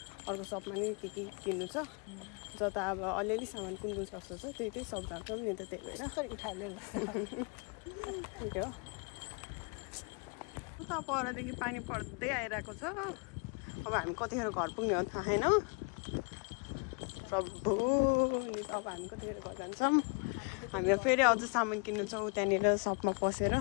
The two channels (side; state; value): right; quieter; 34.4 dB